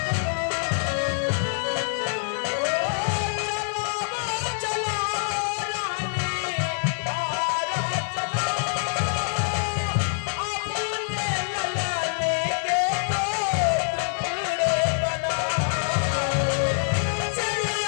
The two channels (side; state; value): right; silent; 59 dB below the other